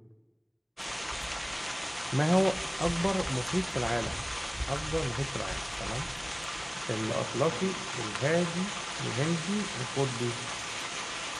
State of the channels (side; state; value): both; identical; correlation 1.00